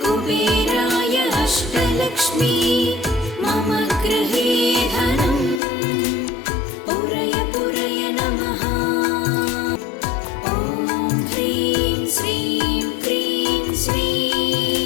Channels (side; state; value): right; drops out; at 5.6 s